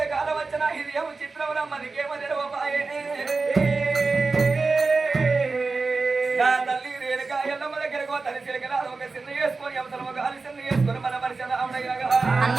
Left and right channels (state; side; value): quieter; left; 4.0 dB